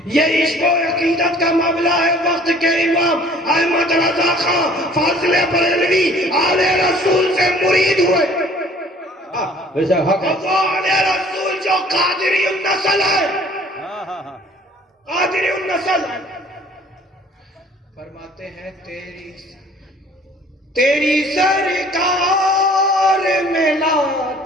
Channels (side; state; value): both; normal; correlation 0.53